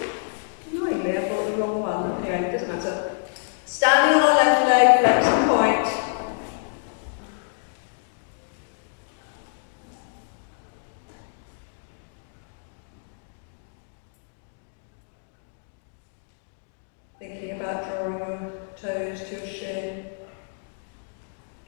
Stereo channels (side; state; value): right; silent; digital silence